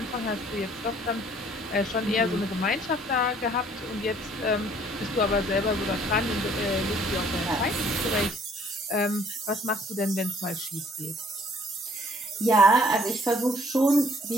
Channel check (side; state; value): both; normal; correlation 0.59